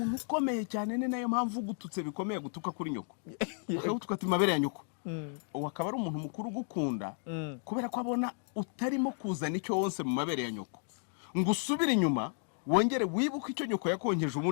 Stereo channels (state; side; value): silent; right; 56 dB below the other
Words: ukomeye cyane, ni nayo mpamvu gututse bikomeye gutuka kuri nyoko. Ukavuga mabere ya nyoko. Akaba ari umuntu mukuru gukunda kubera ko abona utarimo kuzana icyo wonse mu mabere ya nyoko, ngo usubire inyuma wongere wibuke icyo nyoko yakonkeje